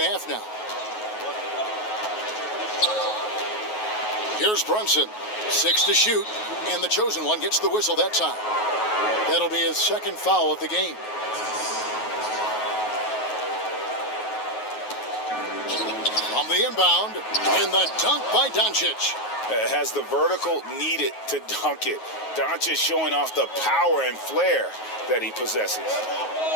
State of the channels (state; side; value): late; right; 9.4 ms